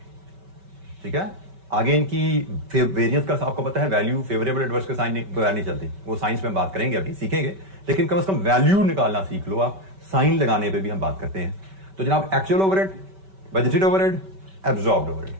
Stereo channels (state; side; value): late; left; 5.2 ms